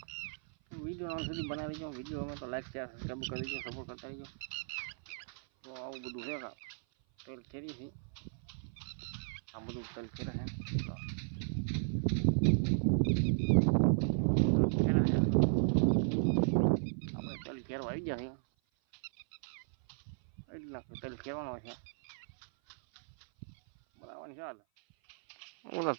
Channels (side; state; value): left; silent; 54 dB below the other